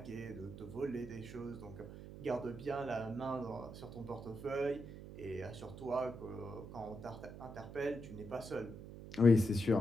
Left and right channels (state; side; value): noise; right; hum, 12 dB below the sound